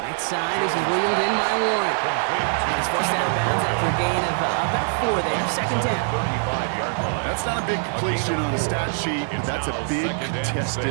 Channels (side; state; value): left; silent; 63 dB below the other